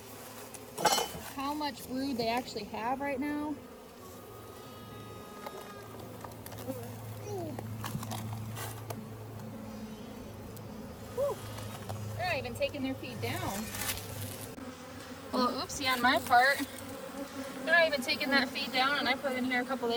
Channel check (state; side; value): identical; both; correlation 1.00